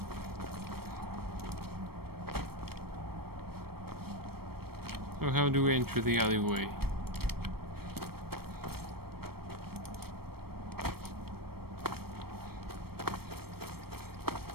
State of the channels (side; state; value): left; late; 0.95 ms